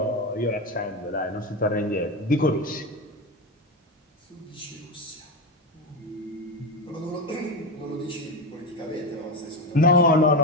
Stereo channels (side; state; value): both; normal; correlation 0.15